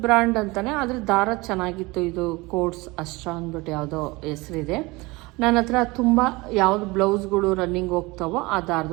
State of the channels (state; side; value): quieter; left; 23.4 dB